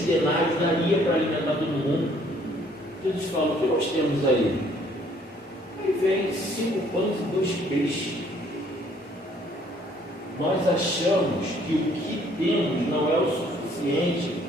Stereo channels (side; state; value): both; normal; correlation 0.62